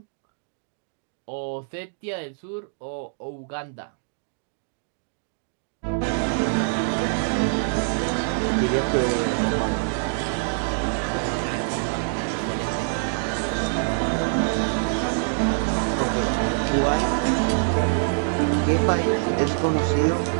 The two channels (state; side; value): silent; left; digital silence